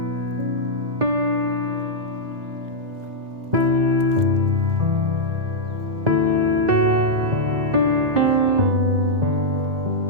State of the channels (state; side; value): late; left; 1.9 ms